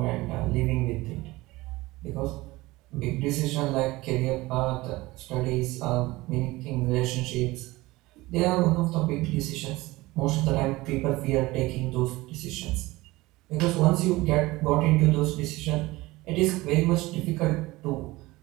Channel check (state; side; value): quieter; left; 20.1 dB